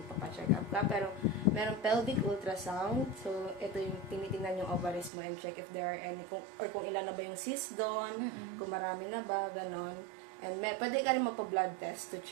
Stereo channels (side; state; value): left; drops out; at 5.1 s